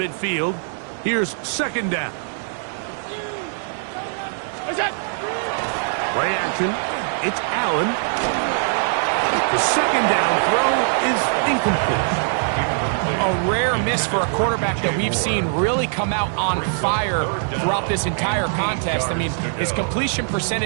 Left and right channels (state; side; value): silent; left; digital silence